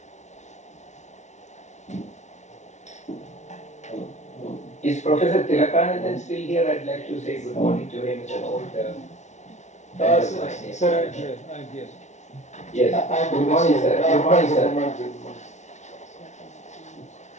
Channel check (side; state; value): right; late; 0.34 ms